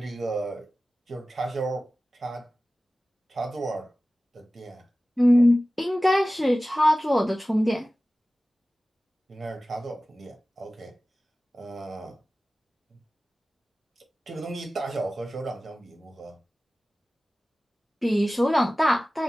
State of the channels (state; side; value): normal; both; correlation 0.96